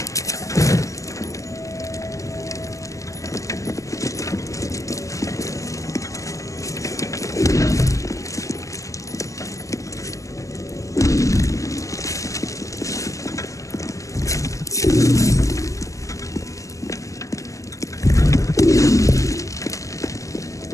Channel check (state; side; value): late; right; 0.16 ms